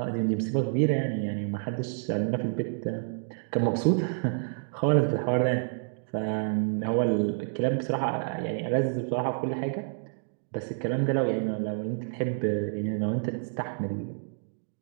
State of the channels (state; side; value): silent; left; digital silence